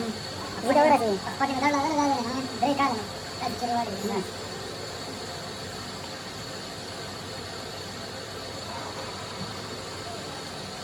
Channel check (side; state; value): both; identical; correlation 1.00